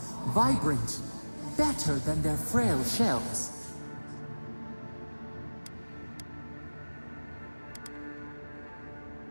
vibrant. better than their frail shells.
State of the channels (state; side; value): inverted; both; correlation -1.00